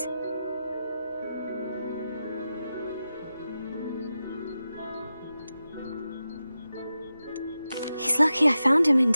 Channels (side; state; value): both; inverted; correlation -0.91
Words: He's lucky I found him in